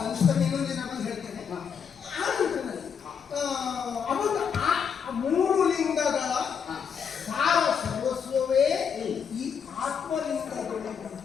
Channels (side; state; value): right; quieter; 7.0 dB